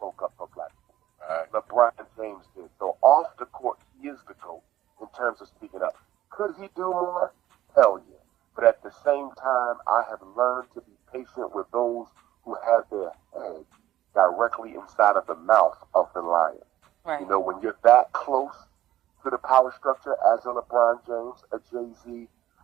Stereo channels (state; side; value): quieter; left; 13.6 dB